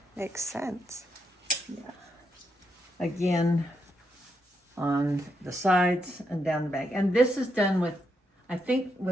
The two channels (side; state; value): both; normal; correlation 0.81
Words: Makes sense. Yeah. Again, on the sides and down the back. And this is done with, I think,